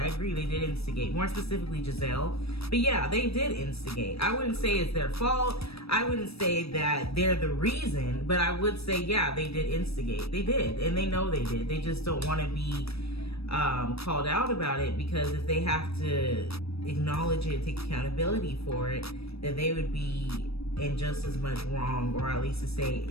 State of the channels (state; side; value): late; right; 0.78 ms